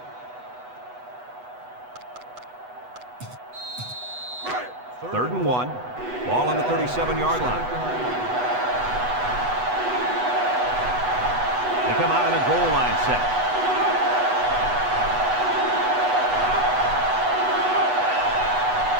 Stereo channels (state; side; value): late; left; 8.1 ms